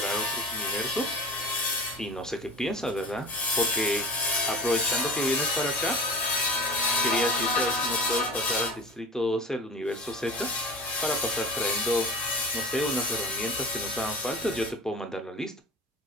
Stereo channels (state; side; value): normal; both; correlation 0.36